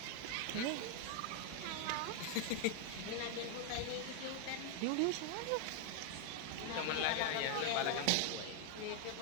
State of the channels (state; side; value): different; both; correlation 0.00